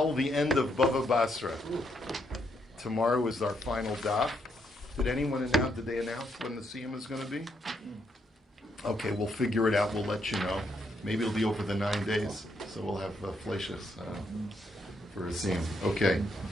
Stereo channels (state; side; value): normal; both; correlation 0.76